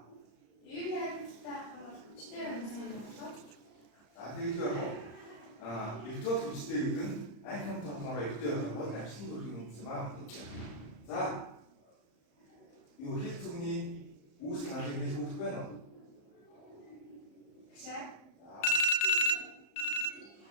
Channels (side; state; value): right; late; 34 ms